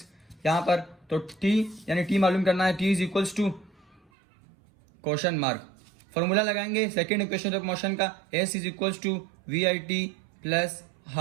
यहाँ पर, तो t यानी t मालूम करना है, t is equals to question mark, formula लगाएंगे सेकेंड इक्वेशन ऑफ मोशन का, s is equals to v i t plus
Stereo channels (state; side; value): drops out; left; at 4.0 s